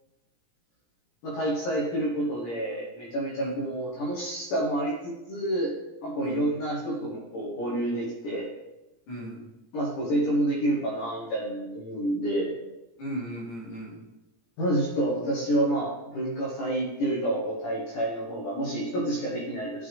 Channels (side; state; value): right; late; 17 ms